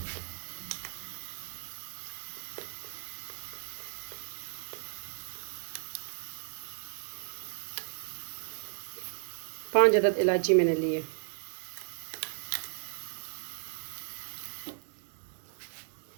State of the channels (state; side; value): silent; left; 54 dB below the other